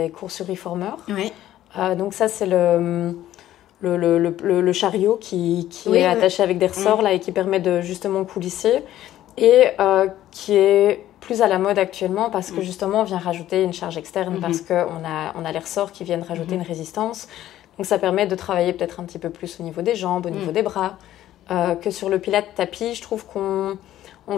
cours sur Reformer. Oui. Donc ça, c'est le chariot qui est attaché avec des ressorts là, et qui permet de justement coulisser et qui est plus à la mode actuellement parce que justement on vient rajouter une charge externe parce qu'on a les ressorts qui viennent rajouter une résistance. Donc ça permet de travailler peut-être un petit peu plus au niveau des jambes, au niveau des bras, que sur le Pilate tapis. Je trouve qu'on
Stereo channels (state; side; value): quieter; right; 13.1 dB